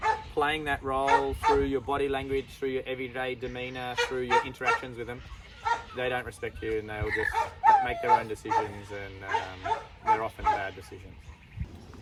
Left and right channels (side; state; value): both; identical; correlation 1.00